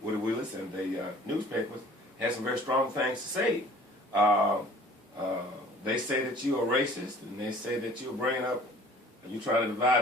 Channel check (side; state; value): both; normal; correlation 0.50